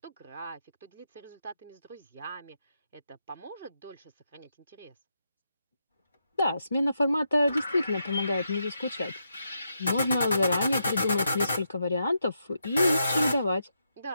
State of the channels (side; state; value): both; inverted; correlation -0.83